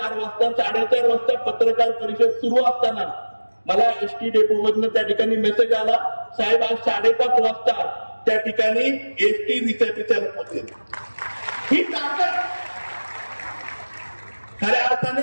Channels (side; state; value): both; inverted; correlation -1.00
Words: वाजता. 4:30 वाजता पत्रकार परिषद सुरू असताना मला एसटी डेपोमधनं त्या ठिकाणी मेसेज आला, साहेब आज 5:30 वाजता त्या ठिकाणी एसटी रिसेपीच्या पोहोचेल. ही ताकद खऱ्या